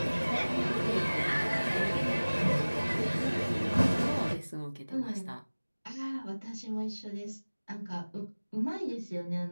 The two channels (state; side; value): inverted; both; correlation -1.00